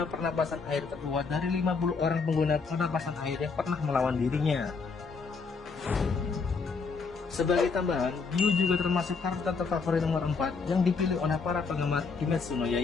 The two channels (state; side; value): quieter; right; 4.8 dB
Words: pernapasan air terkuat dari 50 orang pengguna pernapasan air yang pernah melawan dirinya. Sebagai tambahan, Gyu juga termasuk karakter terfavorit nomor 4 yang dipilih oleh para penggemar Kimetsu no